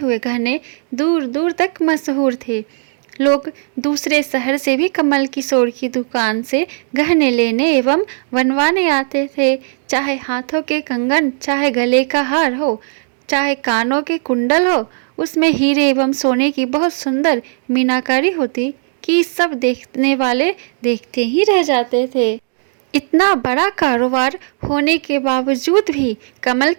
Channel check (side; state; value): left; silent; digital silence